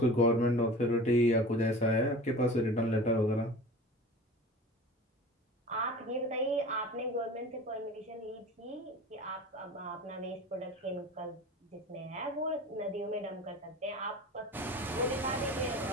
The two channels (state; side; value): normal; both; correlation 0.37